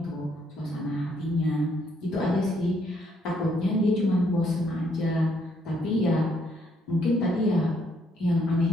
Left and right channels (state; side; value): normal; both; correlation 0.71